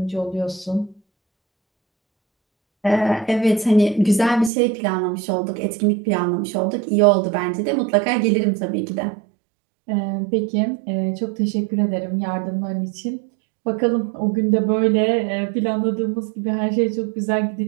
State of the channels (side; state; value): left; drops out; at 4.5 s